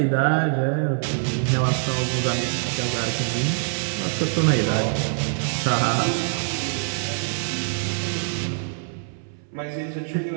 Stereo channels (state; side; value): silent; left; 63 dB below the other